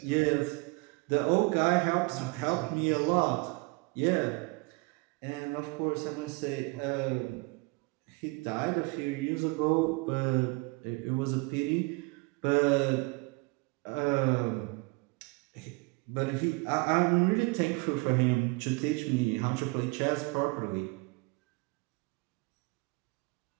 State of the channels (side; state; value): left; quieter; 27.3 dB